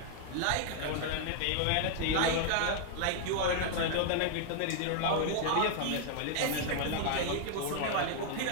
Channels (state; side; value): different; both; correlation -0.01